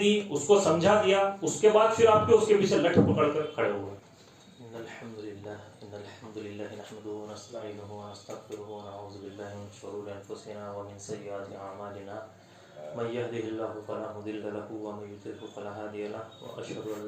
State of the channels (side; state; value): both; identical; correlation 1.00